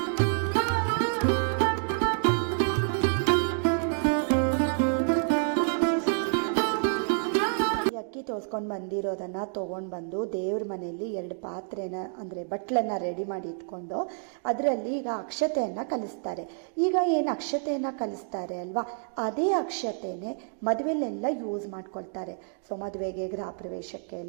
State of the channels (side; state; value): left; silent; 57 dB below the other